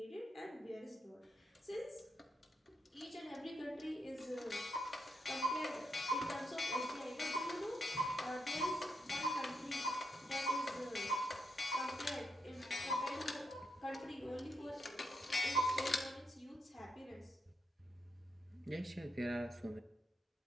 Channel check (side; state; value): both; normal; correlation 0.80